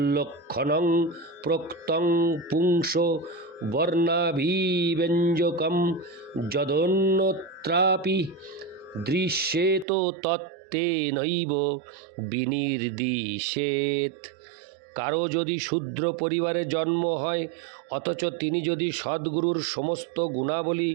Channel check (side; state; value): left; drops out; at 9.9 s